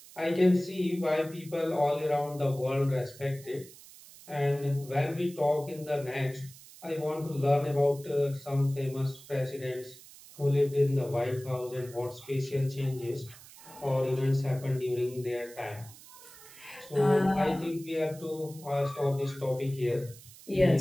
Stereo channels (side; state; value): right; noise; hiss, 19 dB below the sound